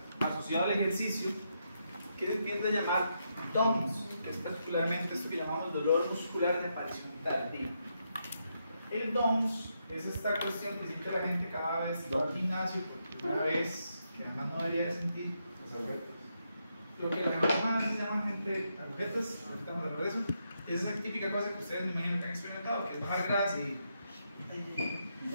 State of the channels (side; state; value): both; inverted; correlation -0.81